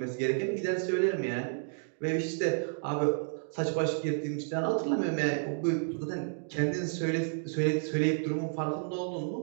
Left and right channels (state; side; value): silent; left; digital silence